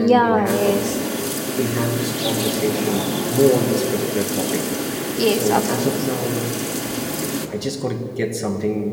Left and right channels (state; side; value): identical; both; correlation 1.00